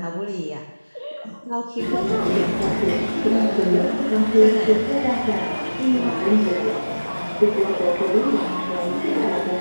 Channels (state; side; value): inverted; both; correlation -1.00